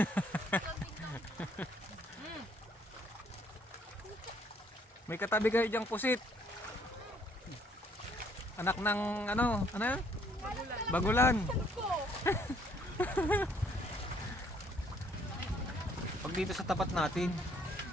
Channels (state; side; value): normal; both; correlation 0.64